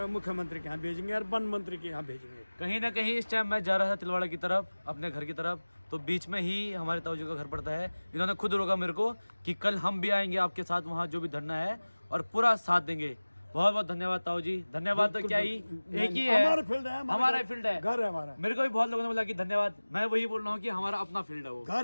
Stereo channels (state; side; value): inverted; both; correlation -1.00